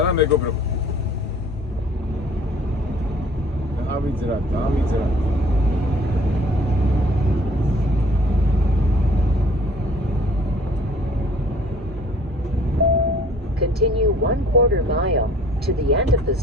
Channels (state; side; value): normal; both; correlation 0.54